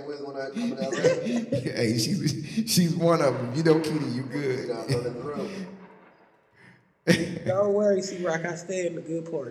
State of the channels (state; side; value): identical; both; correlation 1.00